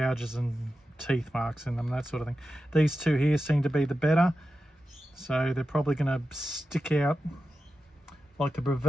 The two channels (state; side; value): normal; both; correlation 0.91